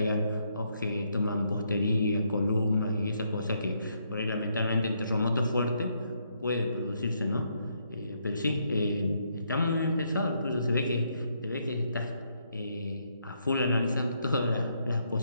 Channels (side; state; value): both; inverted; correlation -0.75